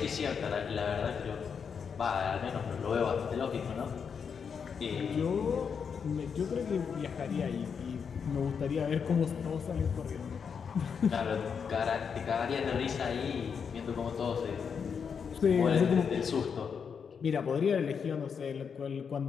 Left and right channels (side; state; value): right; quieter; 6.5 dB